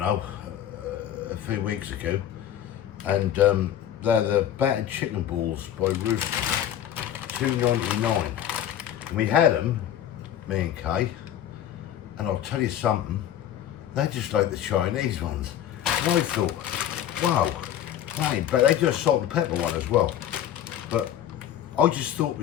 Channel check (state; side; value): quieter; right; 10.9 dB